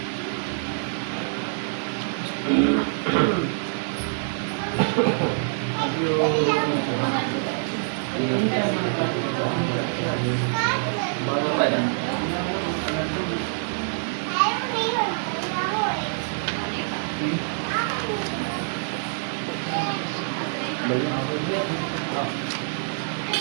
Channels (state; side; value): silent; left; digital silence